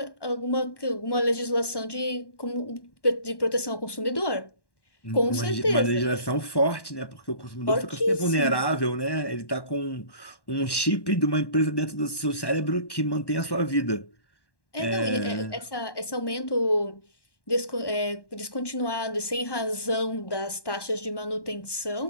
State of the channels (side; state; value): right; late; 1.1 ms